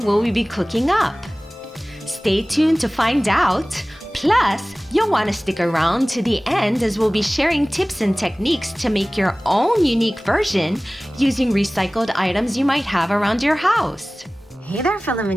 will we be cooking up? Stay tuned to find out. Plus, you'll want to stick around to the end as we'll be sharing tips and techniques to make your own unique version using recycled items you might have around your house. Hey there, fellow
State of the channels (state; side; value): normal; both; correlation 0.98